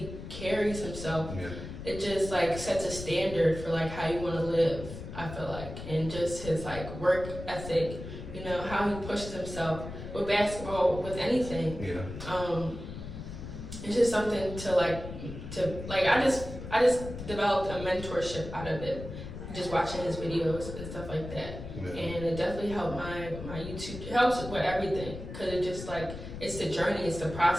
carries himself, it just like sets a standard for like how you want to live, I feel like. And just his like work ethic, you know, how he pushes himself with basketball, with anything. It's just something to I just developed a mentorship out of it. Just watching his videos and stuff like that. And it definitely helped my YouTube. It helps with everything because it just like, it's the journey, it's the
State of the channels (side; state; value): left; noise; rumble, 10 dB below the sound